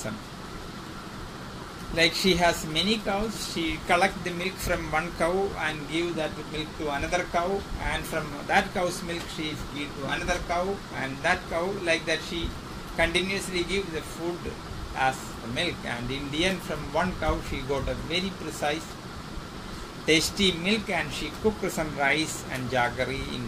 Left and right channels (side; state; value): both; identical; correlation 1.00